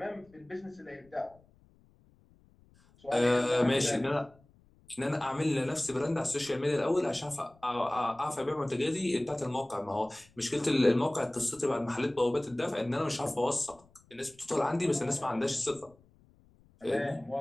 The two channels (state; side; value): noise; left; rumble, 29 dB below the sound